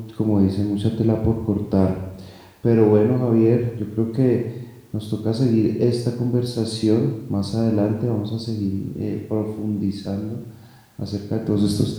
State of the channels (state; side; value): identical; both; correlation 1.00